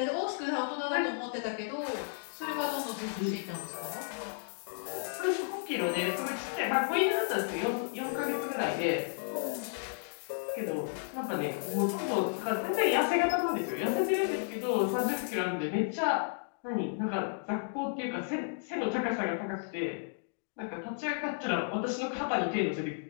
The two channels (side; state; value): right; silent; digital silence